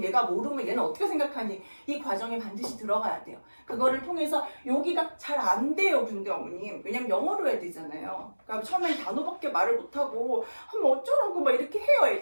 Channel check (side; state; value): both; inverted; correlation -1.00